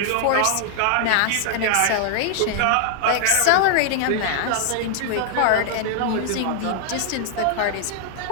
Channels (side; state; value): both; different; correlation -0.01